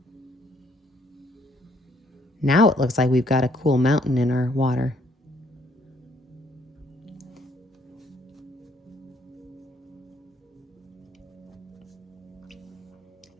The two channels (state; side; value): normal; both; correlation 0.66